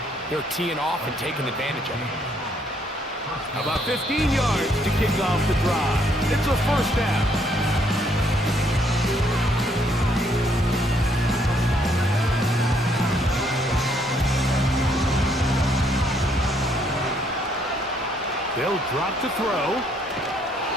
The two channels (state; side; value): normal; both; correlation 0.69